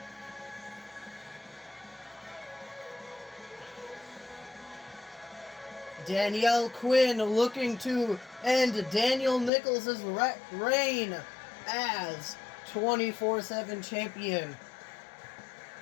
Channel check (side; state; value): right; drops out; at 9.5 s